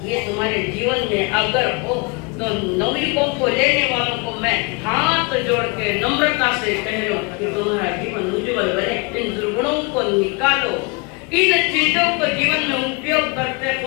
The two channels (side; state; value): right; quieter; 29.5 dB